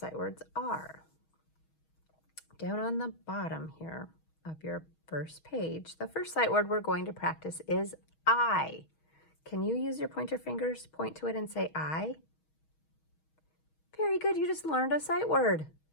words are. Down on the bottom here of your first page, the first sight word we're going to practice is I. Can you use your pointer fingers, point to it and say I? Very good, you just learned a sight word.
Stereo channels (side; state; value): right; late; 6.3 ms